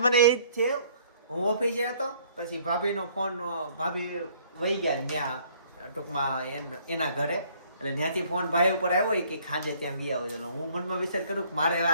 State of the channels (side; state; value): both; inverted; correlation -0.60